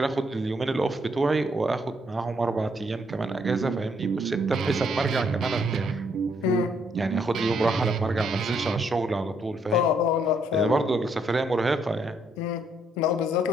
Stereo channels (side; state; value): both; normal; correlation 0.71